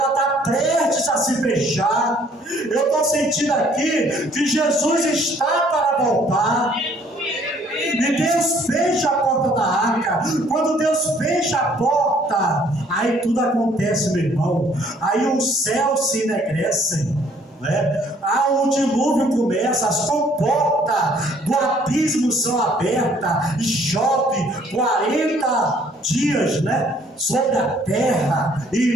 está prestes a se fechar. Eu estou sentindo aqui que Jesus está para voltar. E Deus fecha a porta da arca. Quando Deus fecha a porta, aí tudo acontece, meu irmão. Aí os céus se enegrecem, né? O dilúvio começa, as comportas do abismo são abertas e chove 40 dias, né, sobre a terra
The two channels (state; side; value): normal; both; correlation 0.61